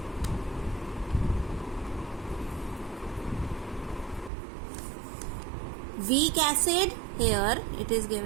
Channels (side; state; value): left; drops out; at 4.3 s